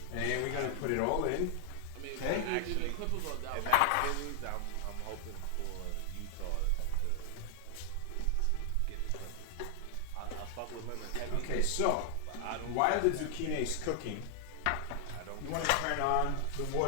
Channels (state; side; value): different; both; correlation 0.00